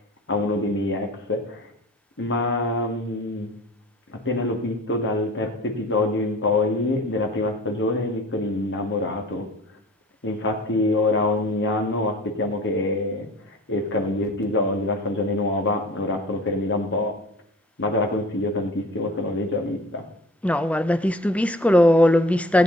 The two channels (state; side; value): normal; both; correlation 0.44